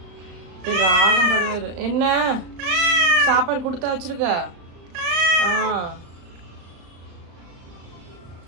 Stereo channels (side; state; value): left; late; 35 ms